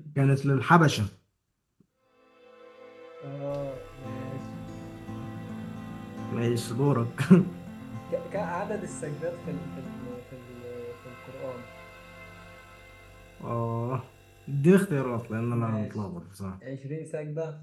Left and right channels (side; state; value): both; identical; correlation 1.00